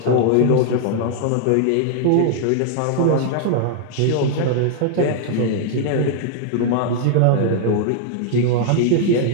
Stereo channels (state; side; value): different; both; correlation 0.00